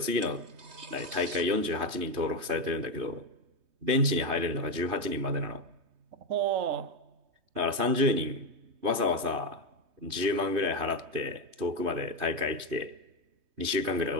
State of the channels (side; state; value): left; late; 3.2 ms